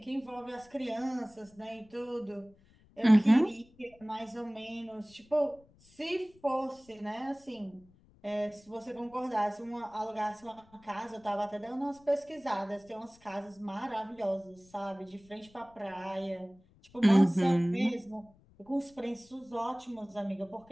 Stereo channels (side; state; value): left; noise; rumble, 28 dB below the sound